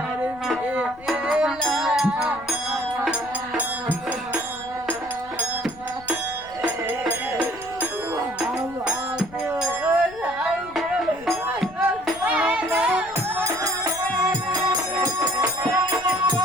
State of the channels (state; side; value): noise; left; rumble, 22 dB below the sound